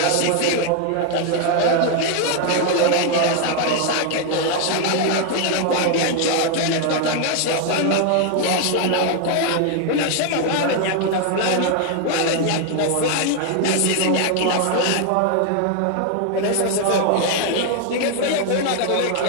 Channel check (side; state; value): both; different; correlation 0.01